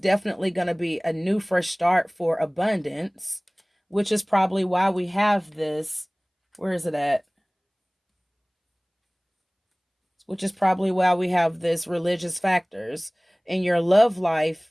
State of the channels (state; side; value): identical; both; correlation 1.00